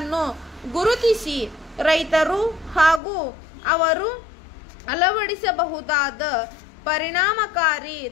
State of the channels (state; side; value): drops out; right; at 3.0 s